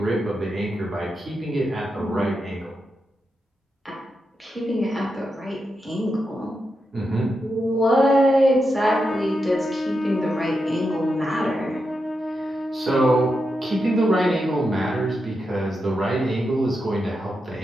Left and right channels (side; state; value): both; normal; correlation 0.86